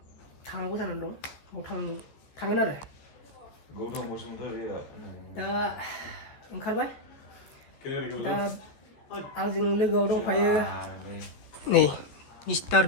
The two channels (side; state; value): right; late; 14 ms